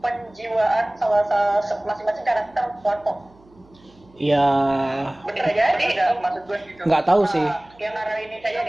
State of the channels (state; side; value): noise; right; hum, 29 dB below the sound